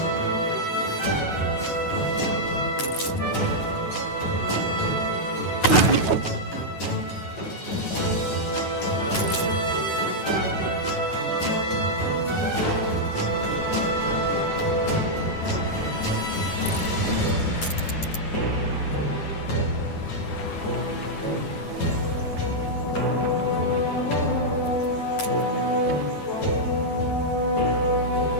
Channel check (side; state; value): right; late; 9.3 ms